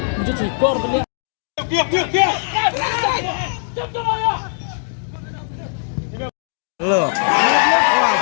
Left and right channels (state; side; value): silent; right; 66 dB below the other